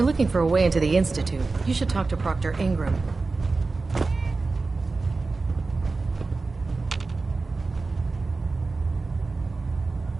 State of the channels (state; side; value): quieter; left; 3.8 dB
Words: looking for a way into the Institute, you should talk to Proctor Ingram.